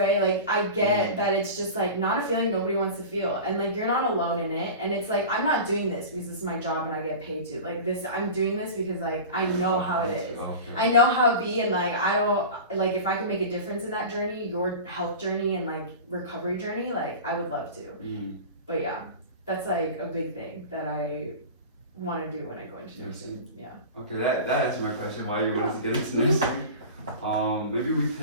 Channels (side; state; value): both; inverted; correlation -0.33